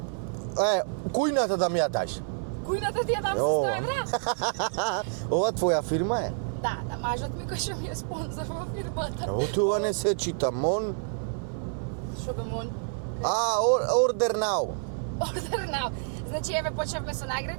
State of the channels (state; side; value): silent; left; 59 dB below the other